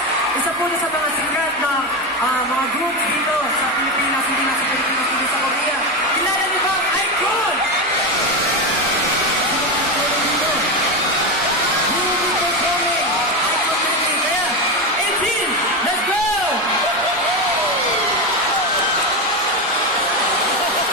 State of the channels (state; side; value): normal; both; correlation 0.14